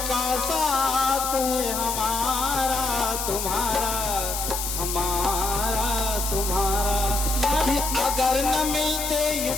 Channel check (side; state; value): left; noise; hiss, 3 dB below the sound